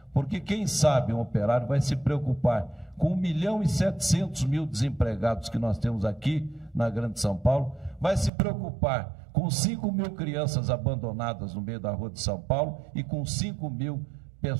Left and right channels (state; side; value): drops out; left; at 8.3 s